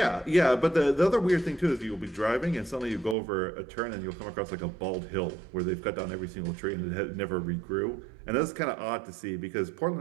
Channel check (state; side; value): drops out; left; at 3.2 s